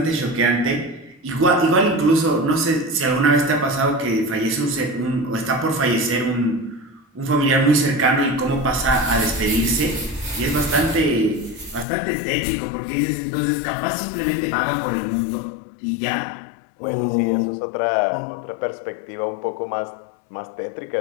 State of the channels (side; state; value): right; drops out; at 11.9 s